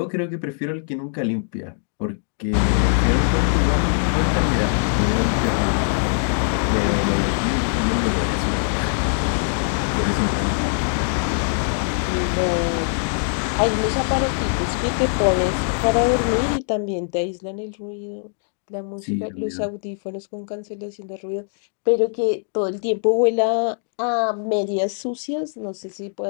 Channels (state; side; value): silent; right; digital silence